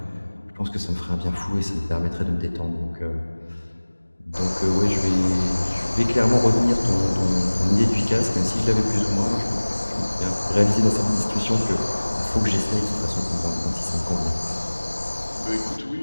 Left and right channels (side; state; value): both; inverted; correlation -1.00